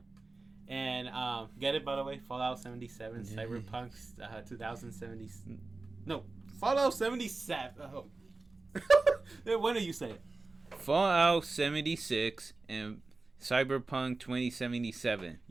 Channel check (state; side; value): quieter; left; 3.5 dB